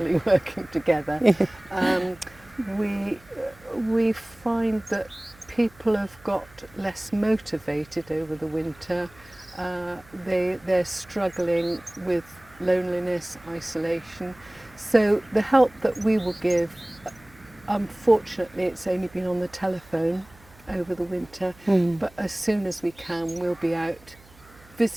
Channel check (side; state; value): right; noise; hum, 26 dB below the sound